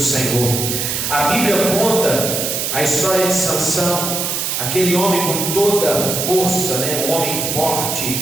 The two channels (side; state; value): right; noise; hiss, 1 dB below the sound